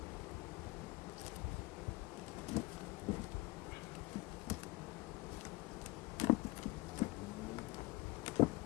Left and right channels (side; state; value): right; quieter; 21.1 dB